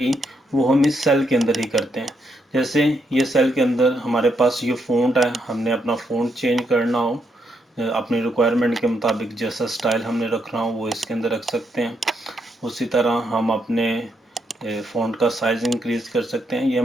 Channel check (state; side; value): normal; both; correlation 0.78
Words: वो हम इस सेल के अंदर ही करते हैं। जैसे ये सेल के अंदर हमारे पास ये फ़ॉन्ट है, हमने अपना फ़ॉन्ट चेंज करना हो अपनी रिक्वायरमेंट के मुताबिक जैसा स्टाइल हमने रखना हो वो इसके अंदर रख सकते हैं। उसी तरह हम अपने फ़ॉन्ट का साइज़ इंक्रीज़ कर सकते हैं। ये